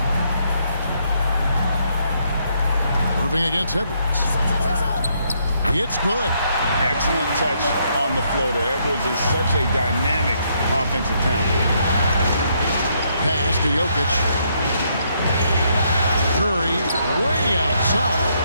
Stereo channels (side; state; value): both; inverted; correlation -0.73